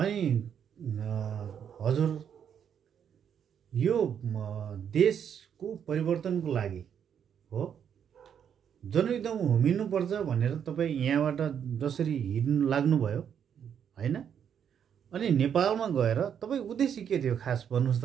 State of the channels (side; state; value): left; quieter; 8.3 dB